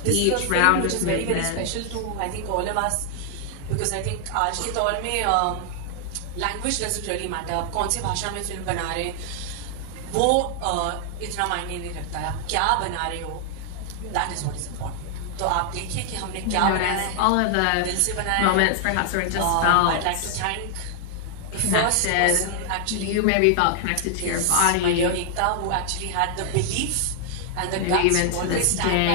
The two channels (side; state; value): both; different; correlation 0.00